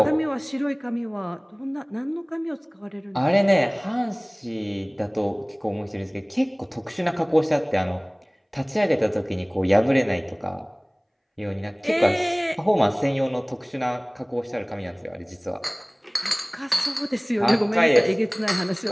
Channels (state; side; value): identical; both; correlation 1.00